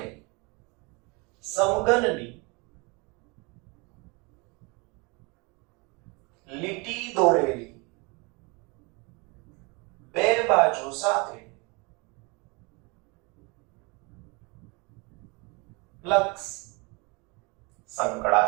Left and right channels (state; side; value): quieter; left; 29.1 dB